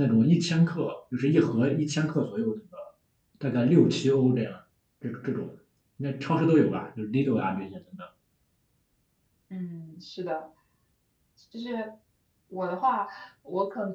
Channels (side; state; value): both; identical; correlation 1.00